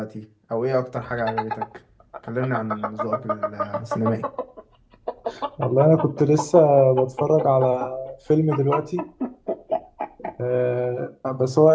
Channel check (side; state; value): both; identical; correlation 1.00